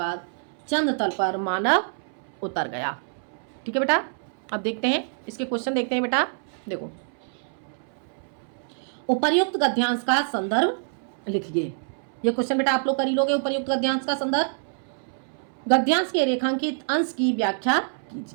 चंद्र तल पर मानव उतर गया। ठीक है बेटा, अब देखते हैं इसके क्वेश्चन देखते हैं बेटा। देखो, उपर्युक्त गद्यांश का संदर्भ लिखिए। ये क्वेश्चन बेटा आप लोग कर ही लोगे। उपर्युक्त गद्यांश का संदर्भ, गद्यांश के रेखांकित अंश की व्याख्या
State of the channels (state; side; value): silent; left; 61 dB below the other